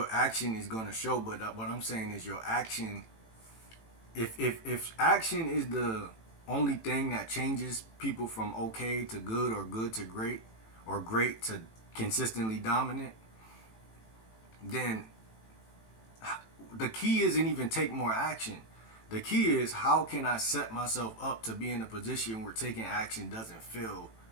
action is gonna show. But what I'm saying is your action. If action is the only thing that changes people from okay to good or good to great or great to consistently dominant, then the key isn't even take more action. The key is how can I set myself up to be in a position where taking action doesn't feel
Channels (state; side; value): late; right; 18 ms